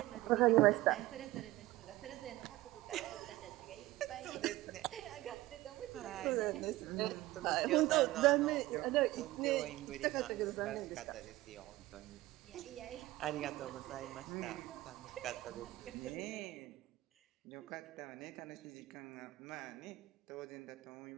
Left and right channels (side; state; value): left; quieter; 17.6 dB